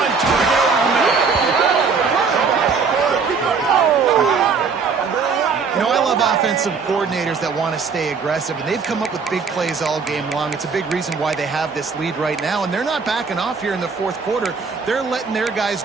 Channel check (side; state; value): left; quieter; 5.2 dB